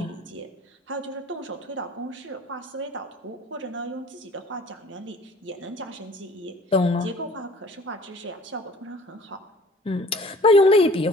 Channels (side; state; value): both; normal; correlation 0.50